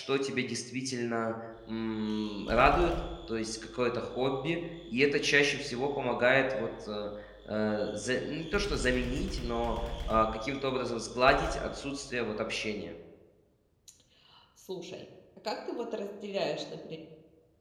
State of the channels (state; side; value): identical; both; correlation 1.00